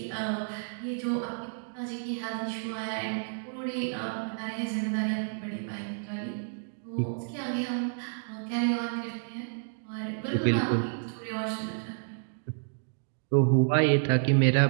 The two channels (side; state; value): left; silent; digital silence